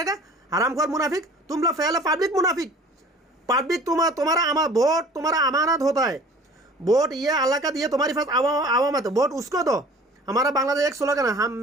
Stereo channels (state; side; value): normal; both; correlation 0.47